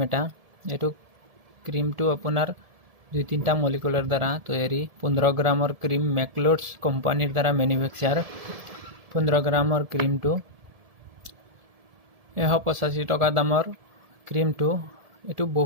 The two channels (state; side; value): late; left; 1.7 ms